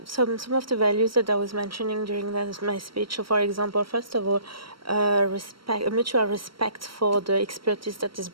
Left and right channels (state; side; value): late; left; 0.74 ms